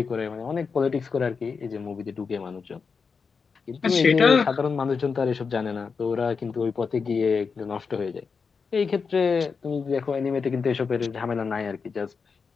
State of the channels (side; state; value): right; quieter; 5.3 dB